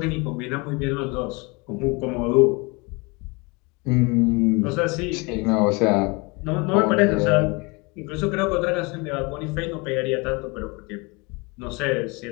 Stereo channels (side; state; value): right; quieter; 27.8 dB